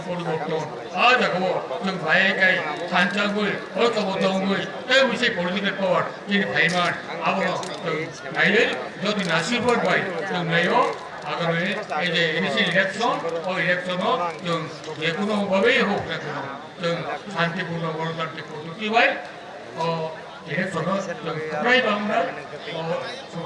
পরিবর্তন আজ আগো जों ভাইগাই সানচাগুই ঐক্যবদ্ধগুই এই বিষয় পরিবর্তনের পর যিনি ভাইমান আবনো ভাইয়ের যদি নাসিবর ভাই जों নাইও আগামী এই যে ইলেকশন ও ইলেকশনও जों যে কোনো ভাবেই হোক না কেন जों শান্তিপূর্ণ গণতান্ত্রিক পদ্ধতি ভাই ও ইলেকশনও जों প্রায় বাংলা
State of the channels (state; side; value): identical; both; correlation 1.00